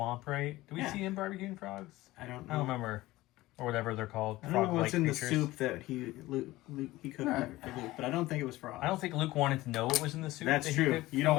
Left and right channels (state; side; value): quieter; right; 18.0 dB